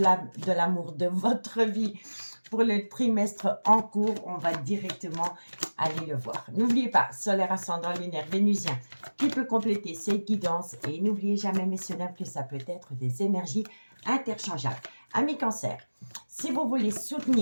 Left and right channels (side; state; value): both; inverted; correlation -1.00